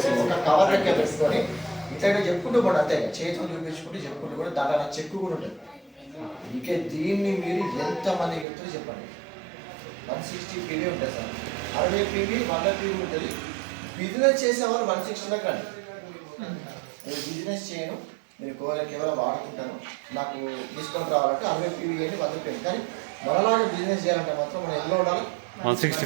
ఒక కవర్ లెక్క పెట్టుకొని ఇట్లా చెప్పుకుంటూ కూడా అంతే చేతితో చూపించుకుంటూ చెప్పుకుంటూ కూడా దాంట్లో చెక్కు కూడా ఉంటుంది. ఇంకే దీన్ని మీరు ఎంతమందికి చెప్తారో చెప్పండి. 160 పీవీ ఉంటుంది సార్, 60 పీవీ 100 పీవీ ఉంటుంది. బిజినెస్ చేసేవాళ్ళు 160 కండి. నేను బిజినెస్ చేయను, నేను కేవలం వాడుకుంటాను, నాకు డిస్కౌంట్ రావాలంటే 60 పీవీ అని 100 పీవీ. కానీ మనలాగా బిజినెస్ చేయాలంటే మాత్రం మనం ఎలా ఉండాలి, 160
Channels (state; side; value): drops out; left; at 8.5 s